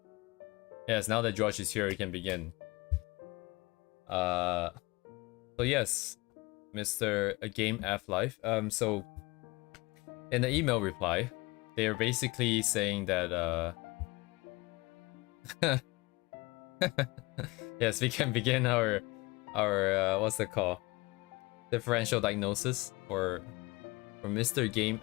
Yes, now that George is here, we can begin. So yes, Mr. Game F Life. So in the email reply, they're basically saying that yes, we can begin our what's it called? Differential diagnosis for Mr. Game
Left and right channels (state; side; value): quieter; right; 23.8 dB